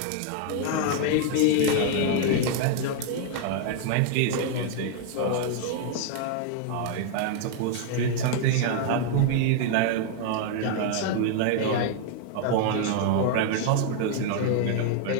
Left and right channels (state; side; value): different; both; correlation 0.00